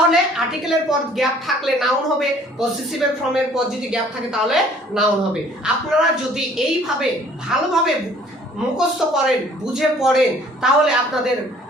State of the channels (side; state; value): both; normal; correlation 0.56